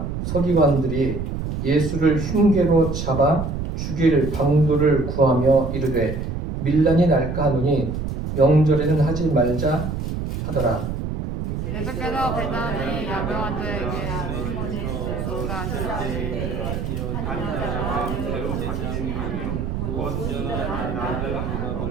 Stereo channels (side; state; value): right; noise; rumble, 4 dB below the sound